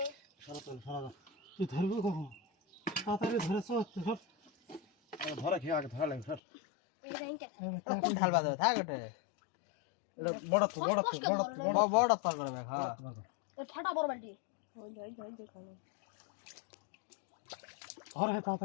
তুই ধরবি কখন তাড়াতাড়ি ধরে চল সব ধরে খেয়ে আগে ধরা লাগে ধর কোন ঢাল বাজে থাক ওটা এটা বড় তো বড় পা করবে হ্যাঁ ফাটা বড় বালতি ধরে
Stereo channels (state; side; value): drops out; right; at 6.4 s